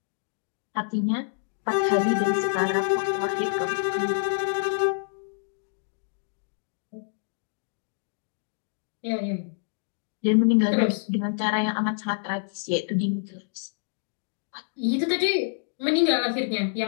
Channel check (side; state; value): right; silent; digital silence